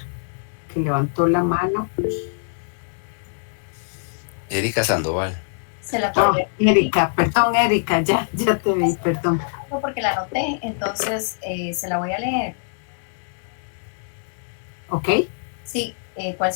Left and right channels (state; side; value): silent; right; digital silence